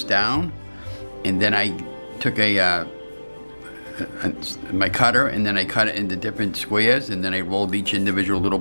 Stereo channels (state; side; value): inverted; both; correlation -1.00